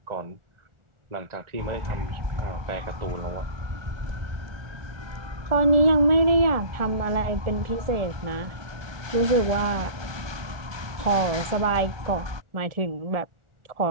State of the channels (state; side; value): late; left; 1.2 ms